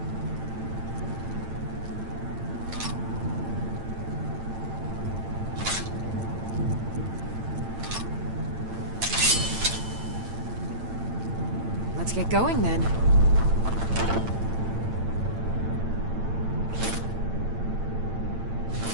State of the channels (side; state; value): left; late; 8.9 ms